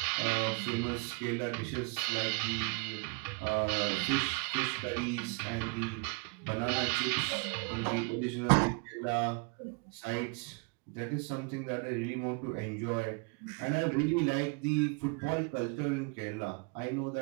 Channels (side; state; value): left; quieter; 32.0 dB